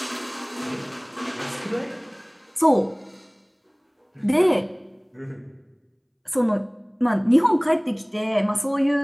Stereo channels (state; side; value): identical; both; correlation 1.00